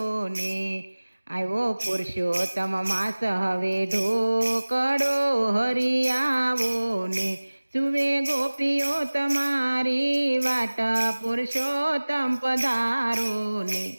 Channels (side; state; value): both; inverted; correlation -1.00